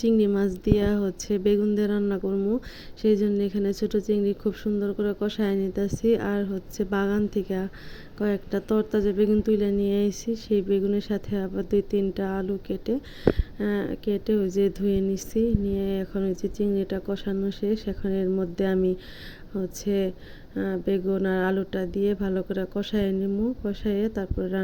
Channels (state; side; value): identical; both; correlation 1.00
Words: মাছ দিয়া বেগুন দিয়ে রান্না করবো। সেই জন্য এখানে ছোট চিংড়ি খুব সুন্দর করে কষায় নিতেছি। আর বাগান থেকে কয়েকটা তরতাজা বেগুন তুলে নিয়ে এসেছি। সেই বেগুনের সাথে আবার 2-3টা আলু কেটে কেটে ধুয়ে নিচ্ছি। নিয়ে এখন চিংড়িটা কষানো শেষ। এখন এর মধ্যে আমি হচ্ছে বেগুন আর আলুটা দিয়ে ভালো করে কষায় নিমু, কষাইয়ে তারপরে